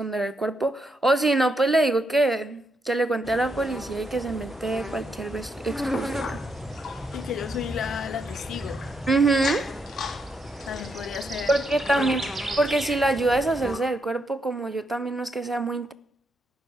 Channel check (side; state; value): both; normal; correlation 0.79